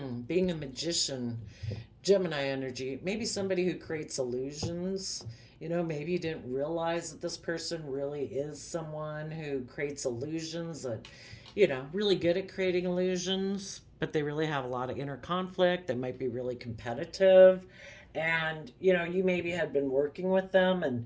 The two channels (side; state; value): both; identical; correlation 1.00